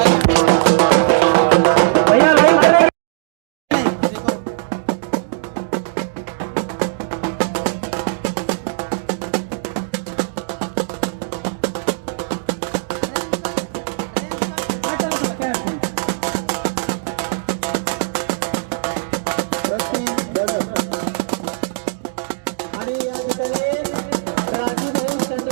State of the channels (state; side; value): silent; left; digital silence